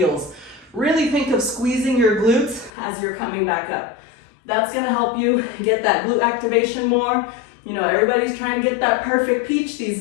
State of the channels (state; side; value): drops out; right; at 2.7 s